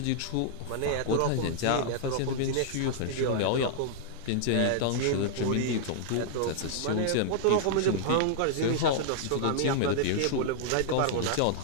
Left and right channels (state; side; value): different; both; correlation -0.01